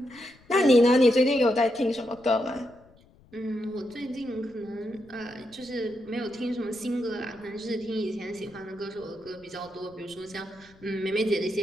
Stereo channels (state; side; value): noise; left; rumble, 27 dB below the sound